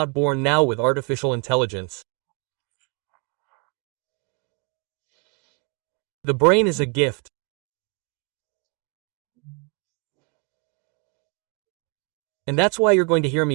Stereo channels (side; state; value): left; quieter; 32.7 dB